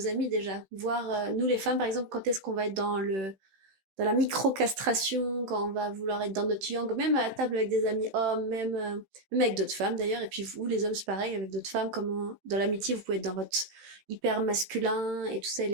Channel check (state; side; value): late; left; 16 ms